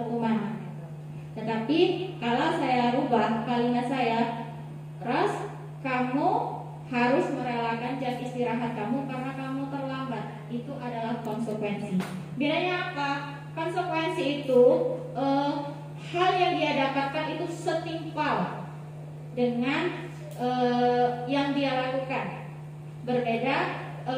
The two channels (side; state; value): both; identical; correlation 1.00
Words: hukuman. Tetapi kalau saya rubah kalimat saya, Ros, kamu harus merelakan jam istirahat kamu karena kamu terlambat. Itu adalah konsekuensi. Bedanya apa? Konsekuensi itu hal yang dia dapatkan itu setimpal dengan yang dia lakukan. Berbeda